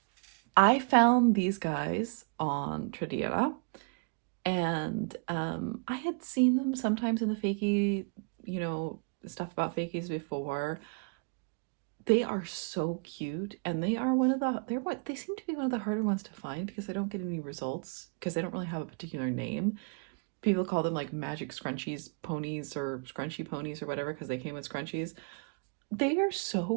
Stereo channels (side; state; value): left; quieter; 36.8 dB